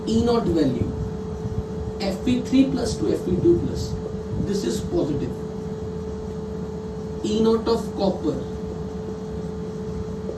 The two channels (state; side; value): identical; both; correlation 1.00